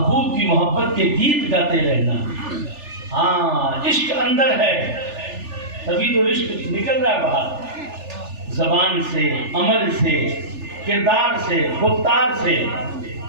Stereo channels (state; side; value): late; left; 3.4 ms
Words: کی محبت کے گیت گاتے رہنا. ہاں، عشق اندر ہے تبھی تو عشق نکل رہا ہے باہر، زبان سے، عمل سے، کردار سے، گفتار سے